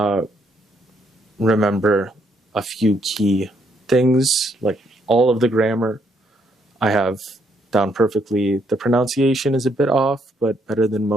remember a few key things, like all of the grammar I have down perfectly. The pronunciation is a bit off, but better than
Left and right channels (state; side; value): normal; both; correlation 0.72